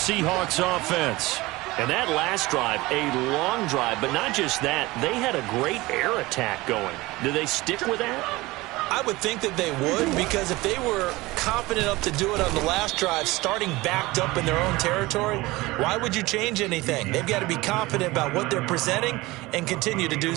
offense. And that last drive, a long drive, but not just that, they had a great air attack going. Do they stick with that? I would think that they would, because if they were confident enough to do it on the last drive, starting backed up in their own territory, why would you change anything? They've got to be confident about what they're presenting and continue to do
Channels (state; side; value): quieter; left; 20.5 dB